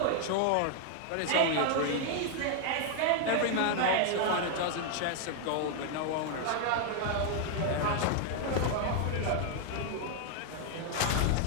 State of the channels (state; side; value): different; both; correlation 0.00